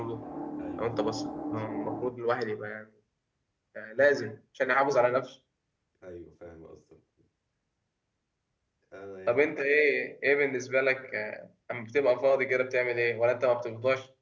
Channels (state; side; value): identical; both; correlation 1.00